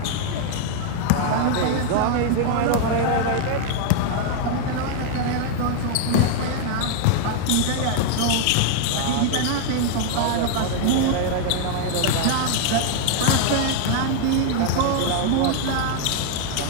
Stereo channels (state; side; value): different; both; correlation 0.00